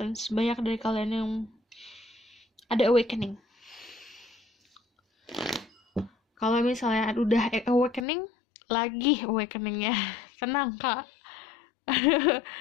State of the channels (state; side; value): drops out; right; at 8.1 s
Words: Banyak dari kalian yang ada awakening. Kalau misalnya udah awakening, lagi awakeningnya. Tenang kak.